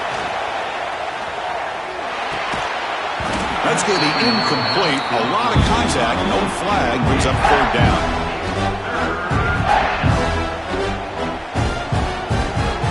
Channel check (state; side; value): identical; both; correlation 1.00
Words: That's going to be incomplete. A lot of contact. No flag. Brings up 3rd down.